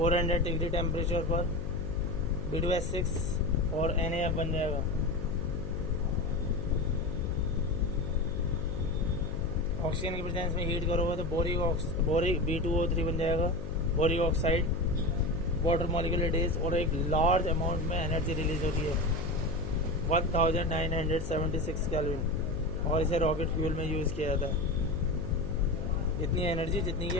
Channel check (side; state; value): left; noise; hum, 9 dB below the sound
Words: डिग्री टेम्परेचर पर B2S6 और NaF बन जाएगा. ऑक्सीजन की प्रेजेंस में हीट करोगे तो बोरिक B2O3 बन जाएगा, boric oxide. Water molecular days और एक लार्ज अमाउंट में एनर्जी रिलीज होती है 1976 केल्विन, और इसे रॉकेट फ्यूल में यूज़ किया जाता है. इतनी एनर्जी जितनी कि